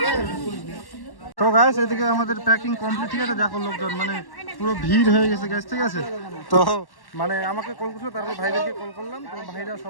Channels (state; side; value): late; right; 1.1 ms